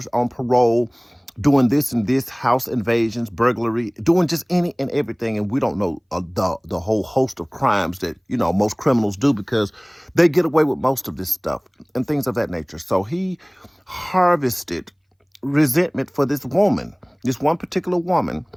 on parole, doing this and this, house invasions, burglary, doing just any and everything. And we don't know the whole host of crimes that, most criminals do because they get away with most of this stuff and things of that nature. So he harvested resentment for this woman, this one particular woman,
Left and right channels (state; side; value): identical; both; correlation 1.00